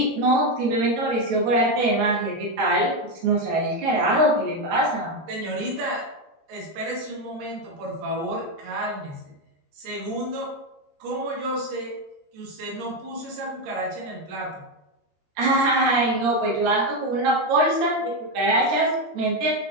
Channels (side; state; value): left; late; 13 ms